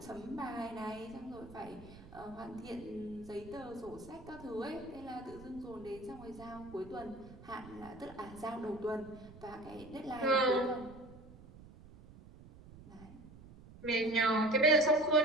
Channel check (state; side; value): noise; right; rumble, 18 dB below the sound